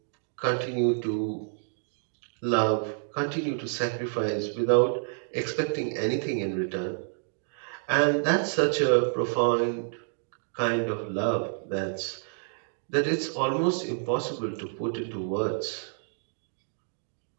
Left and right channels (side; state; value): left; silent; digital silence